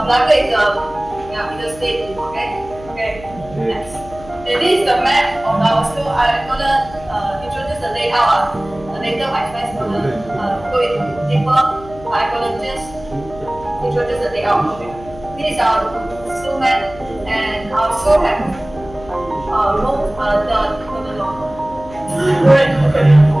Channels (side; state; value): left; noise; hum, 18 dB below the sound